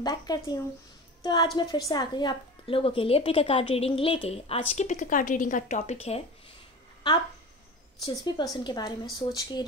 बैक करती हूँ। तो आज मैं फिर से आ गई आप लोगों के लिए पिक अ कार्ड रीडिंग लेके। आज की पिक अ कार्ड रीडिंग का टॉपिक है, आप जिस भी पर्सन के बारे में सोच के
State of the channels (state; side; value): normal; both; correlation 0.33